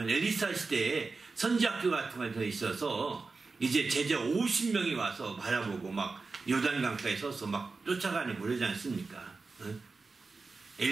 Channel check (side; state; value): left; quieter; 4.1 dB